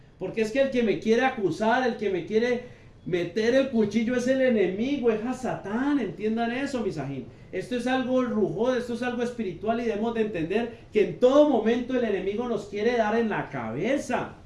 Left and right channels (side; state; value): both; identical; correlation 1.00